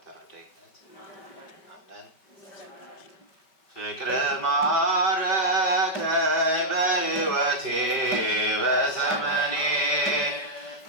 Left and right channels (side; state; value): right; late; 5.1 ms